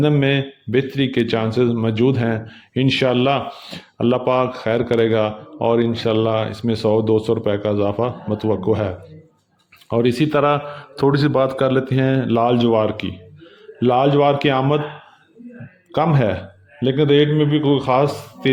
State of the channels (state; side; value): identical; both; correlation 1.00